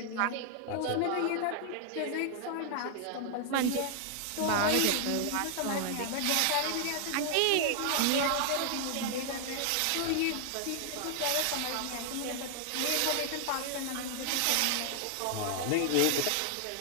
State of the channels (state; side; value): different; both; correlation 0.00